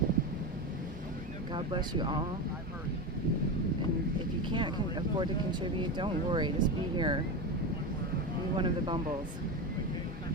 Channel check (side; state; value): both; normal; correlation 0.19